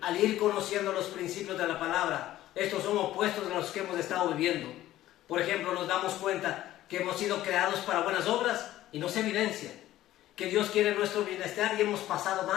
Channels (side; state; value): right; quieter; 14.3 dB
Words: al ir conociendo los principios de la palabra, estos son opuestos a los que hemos estado viviendo. Por ejemplo, nos damos cuenta que hemos sido creados para buenas obras y no se evidencia. Que Dios quiere nuestro bienestar y hemos pasado